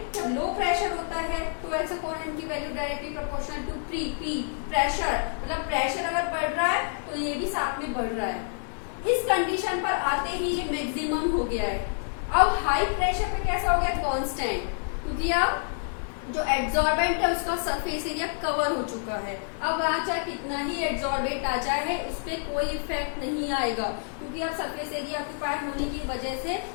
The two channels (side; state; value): right; silent; digital silence